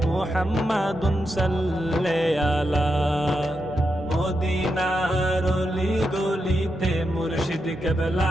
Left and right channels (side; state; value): both; normal; correlation 0.86